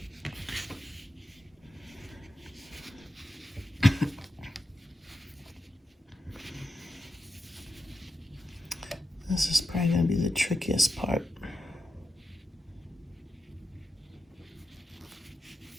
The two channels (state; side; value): normal; both; correlation 0.88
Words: This is probably going to be the trickiest part.